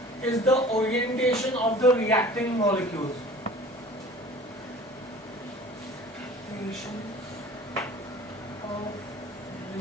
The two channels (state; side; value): normal; both; correlation 0.45